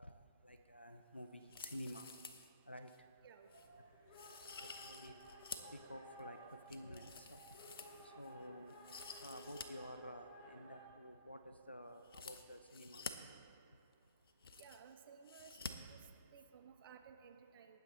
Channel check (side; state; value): both; inverted; correlation -0.59